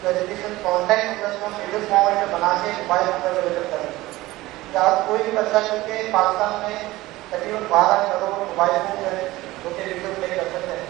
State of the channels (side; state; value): left; quieter; 18.3 dB